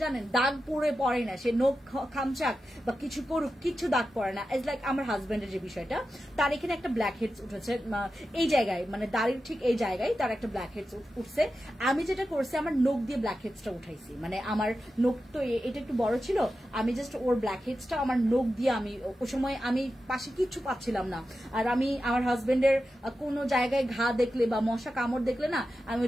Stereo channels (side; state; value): both; normal; correlation 0.91